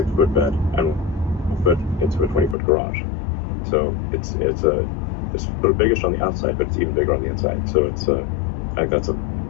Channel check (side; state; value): right; drops out; at 2.6 s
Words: bed and will fit into a 20-foot garage. So it's sort of biggish on the outside, but it's even bigger on the inside. So it's I think that's